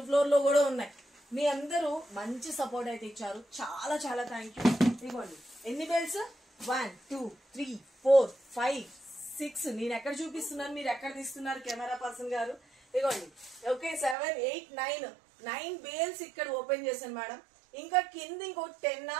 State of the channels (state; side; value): drops out; left; at 14.2 s